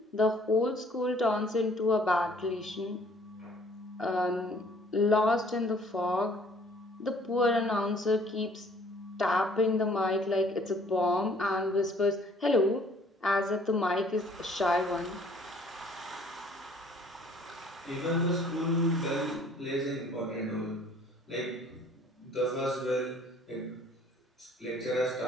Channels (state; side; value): normal; both; correlation 0.57